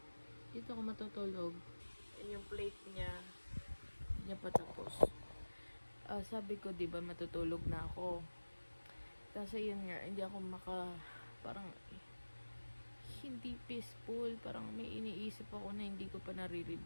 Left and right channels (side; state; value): both; inverted; correlation -1.00